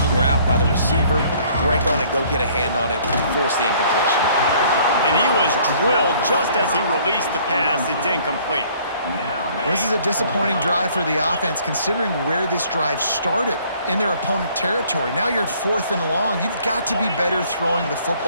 route by the receiver, break on it, go get a hand on it, force the incompletion. And he was drilled just as he released the pass. It's incomplete. Well, this is a disappointing drive for the offense considering where this drive started in their opponent territory. Now you're at 4th and long. You've got to be better throwing the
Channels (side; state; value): both; inverted; correlation -0.59